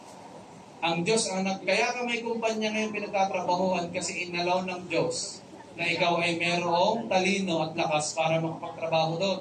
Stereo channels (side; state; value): both; identical; correlation 1.00